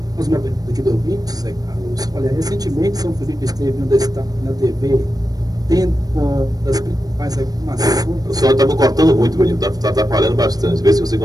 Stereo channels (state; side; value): late; left; 0.18 ms